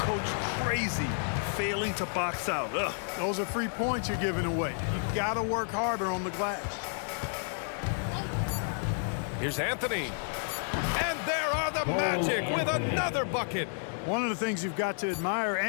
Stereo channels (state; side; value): silent; right; 57 dB below the other